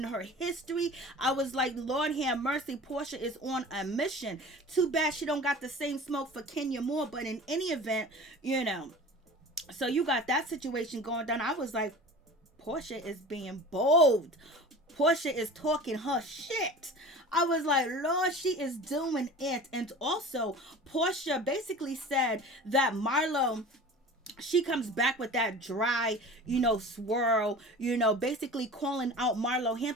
her history. I was like, Lord have mercy, Porsha is on a mission. Too bad she don't got the same smoke for Kenya Moore. But in any event, you know, so you got that situation going down. I was like, Porsha is being bold. Porsha is talking her shit. I was like, Lord, she is doing it. And also, Porsha basically said that Marlo she comes back with that dry, swirl, basically calling out Marlo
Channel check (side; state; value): both; normal; correlation 0.39